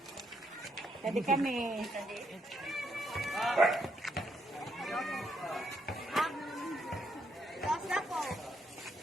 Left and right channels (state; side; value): normal; both; correlation 0.75